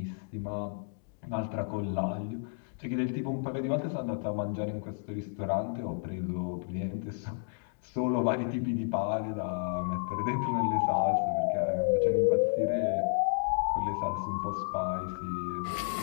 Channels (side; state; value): right; silent; digital silence